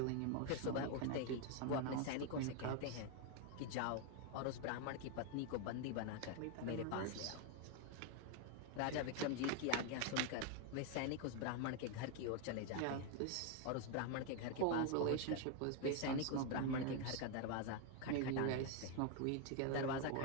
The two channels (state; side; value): different; both; correlation 0.01